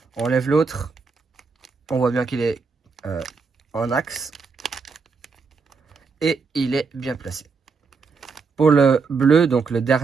on lève l'autre, on voit bien qu'il est en axe, et il est bien placé. Pour le bleu, donc le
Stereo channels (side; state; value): left; quieter; 4.9 dB